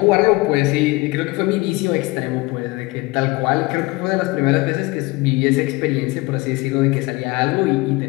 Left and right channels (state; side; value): quieter; right; 22.6 dB